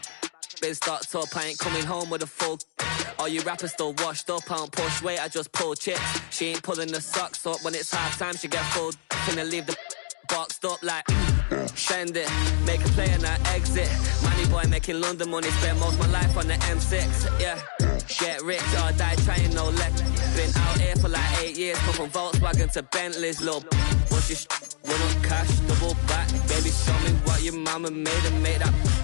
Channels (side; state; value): right; silent; digital silence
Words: Biz starts up, I ain't coming home with a full. All you rappers still washed up, I don't push weight, I just pull chips. She ain't pulling the socks up when it's half time, she get full. Finna leave the boxed up like send it, make a play and I exit. Money boy making London money, spent most of my life on the M6. Yeah, get rich or die trying, no leg. Been out here for like 8 years, come from Volkswagen to Bentley's. Little bushy run up cash, double back. Baby, show me what your mama made and make that.